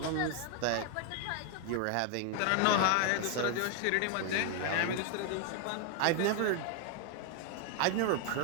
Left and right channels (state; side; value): different; both; correlation 0.00